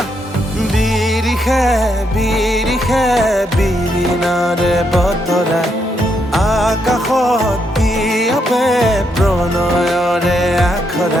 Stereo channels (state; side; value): normal; both; correlation 0.78